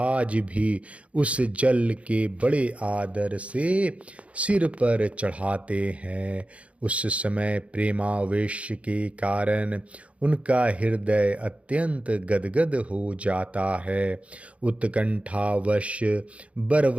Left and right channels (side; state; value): left; late; 0.063 ms